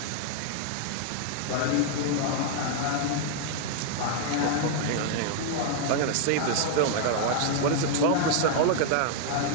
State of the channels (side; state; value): both; different; correlation -0.01